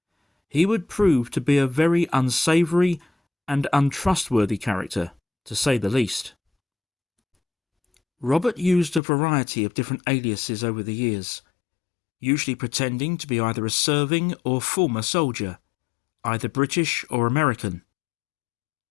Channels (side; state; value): right; drops out; at 9.0 s